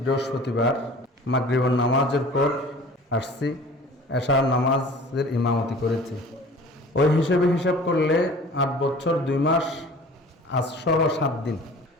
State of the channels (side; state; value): both; normal; correlation 0.44